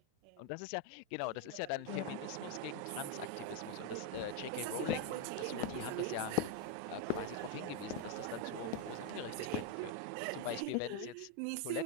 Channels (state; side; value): different; both; correlation 0.01